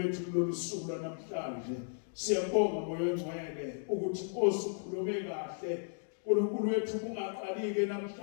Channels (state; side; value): silent; right; digital silence